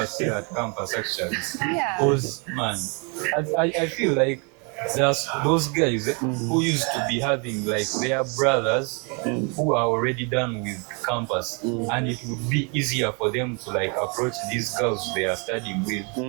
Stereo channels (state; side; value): quieter; left; 34.4 dB